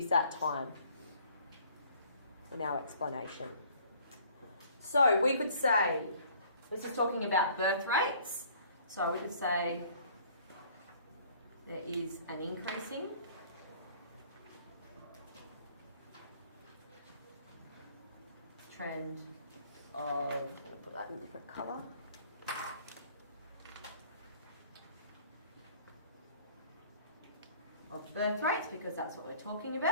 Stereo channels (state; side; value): inverted; both; correlation -0.55